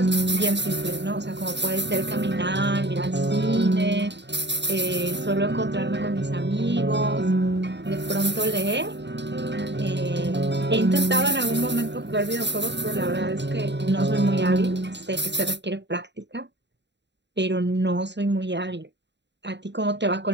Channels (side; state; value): left; late; 0.51 ms